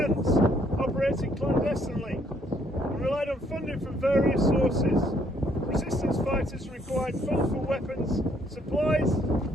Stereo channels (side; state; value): both; normal; correlation 0.67